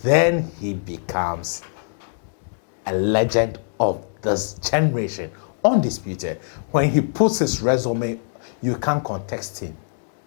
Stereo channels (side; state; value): right; silent; digital silence